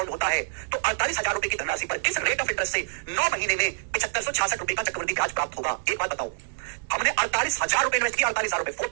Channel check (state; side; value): silent; left; 60 dB below the other